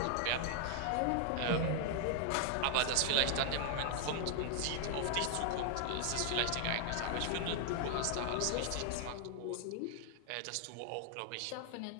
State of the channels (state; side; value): different; both; correlation 0.00